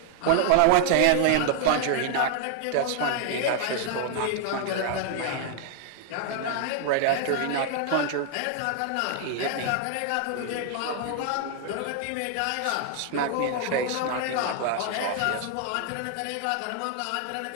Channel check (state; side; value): different; both; correlation 0.00